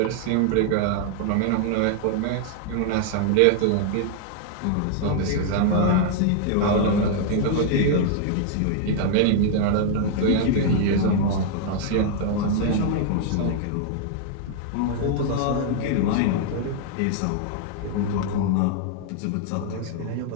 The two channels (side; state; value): both; different; correlation 0.00